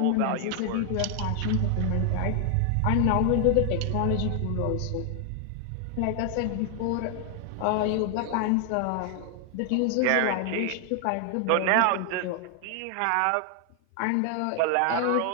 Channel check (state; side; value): different; both; correlation 0.00